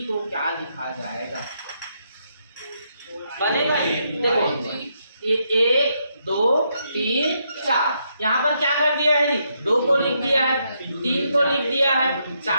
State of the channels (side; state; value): both; inverted; correlation -0.78